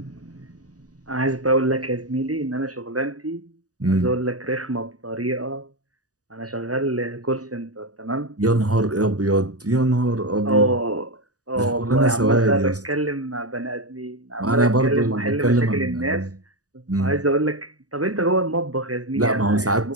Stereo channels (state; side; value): late; left; 0.67 ms